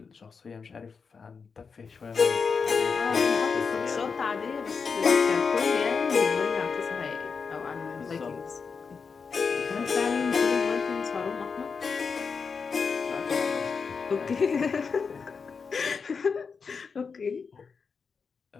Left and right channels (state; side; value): quieter; right; 5.4 dB